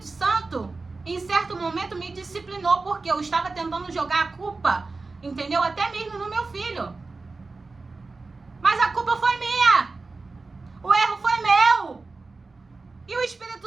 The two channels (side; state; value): left; quieter; 3.8 dB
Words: Santo, em certo momento, me disciplinou, porque eu estava tentando jogar a culpa, entendeu? Até mesmo no meu filho. Mas a culpa foi minha. O erro foi meu. E o